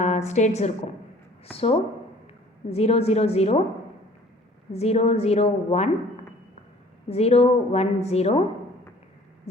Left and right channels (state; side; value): normal; both; correlation 0.52